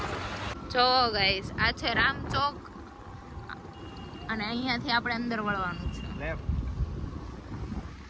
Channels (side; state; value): both; identical; correlation 1.00